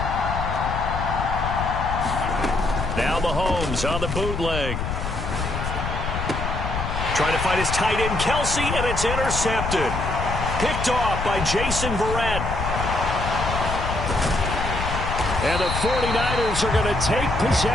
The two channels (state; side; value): noise; left; rumble, 4 dB below the sound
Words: Now Mahomes on the bootleg. Trying to find his tight end, Kelsey, and it's intercepted. Picked off by Jason Verrett. And the 49ers are going to take